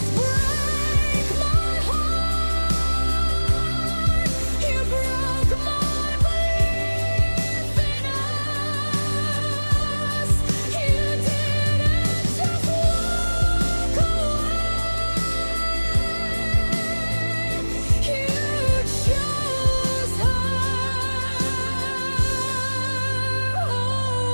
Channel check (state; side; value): inverted; both; correlation -1.00